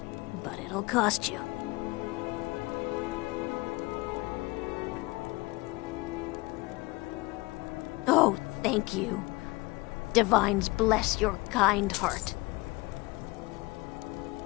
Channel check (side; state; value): right; quieter; 23.2 dB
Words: but it'll cost you. Oh, thank you. Divines bless your kind heart.